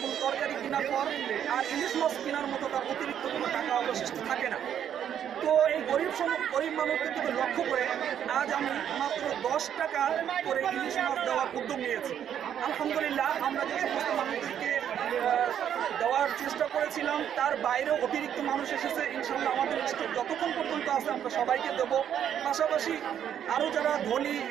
তরকারি কেনার পর আর ইলিশ মাছ কেনার মতো তার অতিরিক্ত কোনো টাকা অবশিষ্ট থাকে না। তো এই গরিব মানুষদেরকে লক্ষ্য করে আজ আমি মাত্র 10 টাকা করে ইলিশ মাছ দেওয়ার উদ্যোগ নিয়েছি। আলহামদুলিল্লাহ, আমরা যে সমস্ত মানুষদেরকে দেওয়ার চেষ্টা করেছিলাম তার বাইরেও অতিরিক্ত মানুষ এসেছে। ইনশাল্লাহ আমাদের স্টক যতক্ষণ পর্যন্ত আছে আমরা সবাইকে দেব। পাশাপাশি আরও যারা ধনী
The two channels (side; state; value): left; quieter; 9.4 dB